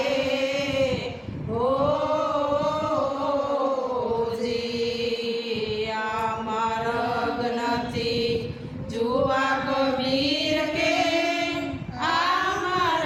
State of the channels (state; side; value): identical; both; correlation 1.00